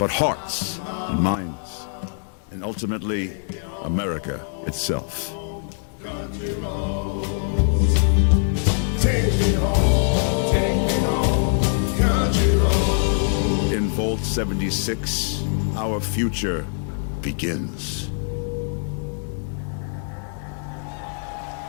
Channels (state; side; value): silent; right; digital silence